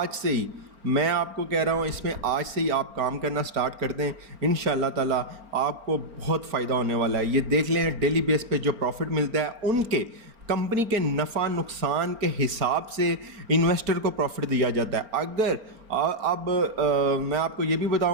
سے ہی میں آپ کو کہہ رہا ہوں، اس میں آج سے ہی آپ کام کرنا سٹارٹ کر دیں، انشاءاللہ تعالیٰ آپ کو بہت فائدہ ہونے والا ہے۔ یہ دیکھ لیں ڈیلی بیس پہ جو پروفٹ ملتا ہے ان کے کمپنی کے نفع نقصان کے حساب سے انویسٹر کو پروفٹ دیا جاتا ہے۔ اگر اب میں آپ کو یہ بھی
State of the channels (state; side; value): late; left; 4.4 ms